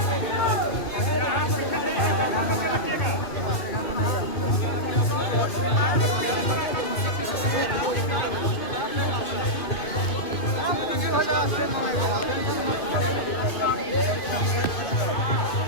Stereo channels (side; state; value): right; late; 2.5 ms